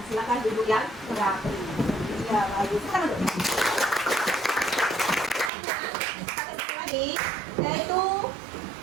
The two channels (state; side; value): drops out; left; at 5.5 s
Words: silakan duduk yang rapi. Iya, bagus. Kita duduk. Lagi, yaitu